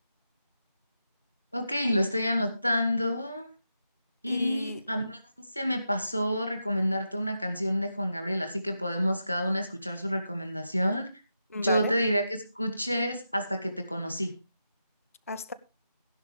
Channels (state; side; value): inverted; both; correlation -0.87